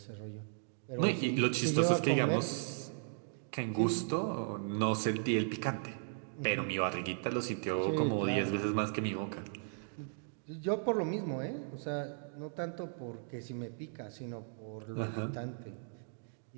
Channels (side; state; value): left; silent; digital silence